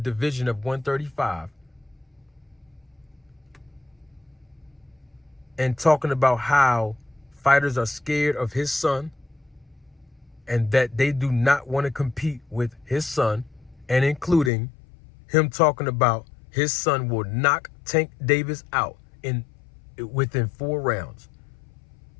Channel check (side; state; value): right; drops out; at 14.5 s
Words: of 135, and talking about how fighters are scared of his son and that they do not want to compete with his son, and including him talking about his son will knock Tank Davis out within 4 rounds.